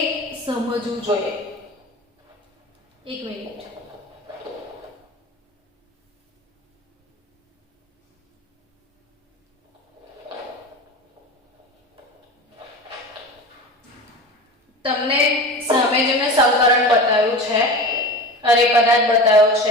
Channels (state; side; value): normal; both; correlation 0.32